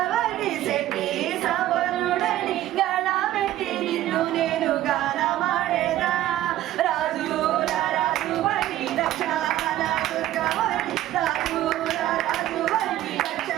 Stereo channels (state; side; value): quieter; left; 13.9 dB